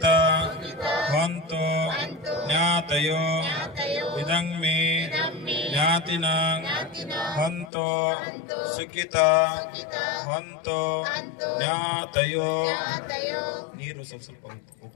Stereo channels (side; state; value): right; drops out; at 7.7 s